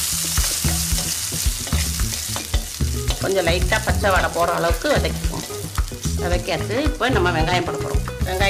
கொஞ்சம் லைட்டாக பச்சை வடை போகிற அளவுக்கு வதக்கிக்கோங்க. வதக்கியாச்சு. இப்போ நம்ம வெங்காயம் போட போகிறோம்.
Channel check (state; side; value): identical; both; correlation 1.00